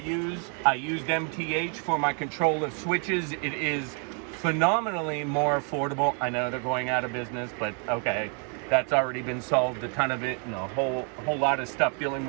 I used MTH for my control of switches. It is phenomenally more affordable. I know they're going out of business, but okay. That's already been solved, a ton of it, and a whole lot of stuff dealing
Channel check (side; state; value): left; quieter; 39.8 dB